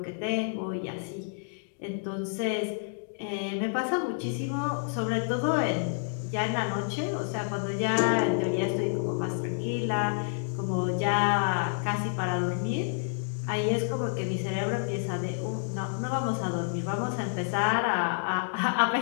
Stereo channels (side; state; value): right; silent; digital silence